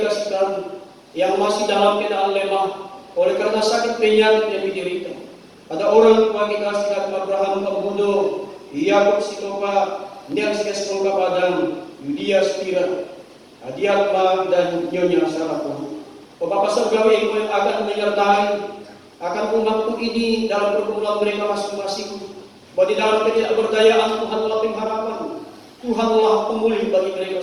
sekalian yang masih dalam keadaan lemah oleh karena sakit penyakit yang diderita. Ada orang tua kita sekalian Abraham Kambudo, Yakub Sitopa, Nelsia Semoga Padang, Yudia Spira, Adiatma dan Nyonya Sarapun. Oh Bapa surgawi yang akan menyertai akan umatku ini dalam pergumulan mereka masing-masing. Bahwa di dalam ketidakberdayaan Tuhanlah pengharapan, Tuhanlah pemulih bagi mereka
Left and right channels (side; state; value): both; identical; correlation 1.00